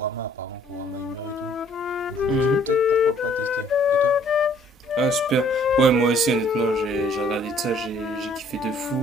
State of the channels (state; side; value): normal; both; correlation 0.60